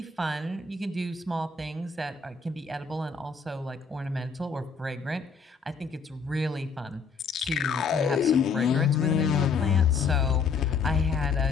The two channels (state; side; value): quieter; right; 5.2 dB